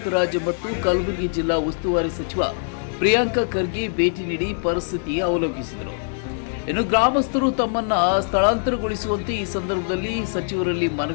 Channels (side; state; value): right; silent; 62 dB below the other